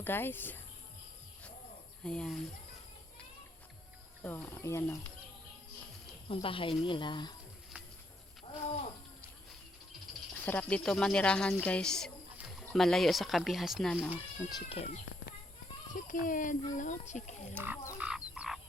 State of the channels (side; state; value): both; normal; correlation 0.74